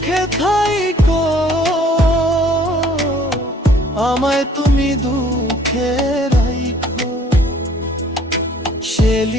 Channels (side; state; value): both; normal; correlation 0.57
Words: থাইকো, আমায় তুমি দুঃখে রাইখো।